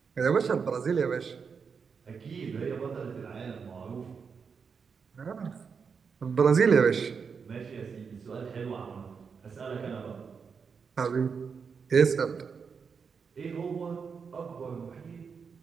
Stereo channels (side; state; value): left; quieter; 5.9 dB